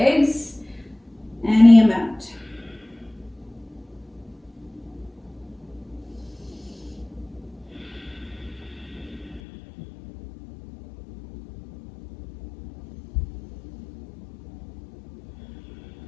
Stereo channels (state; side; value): drops out; right; at 9.4 s